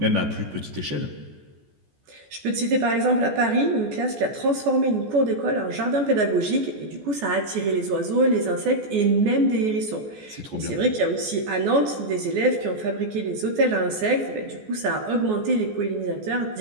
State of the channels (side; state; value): left; late; 14 ms